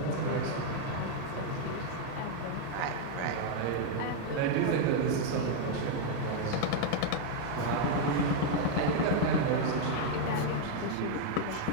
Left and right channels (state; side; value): different; both; correlation 0.00